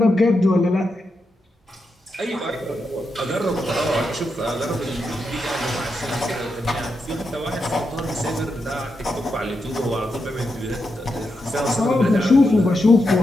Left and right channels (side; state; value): both; normal; correlation 0.85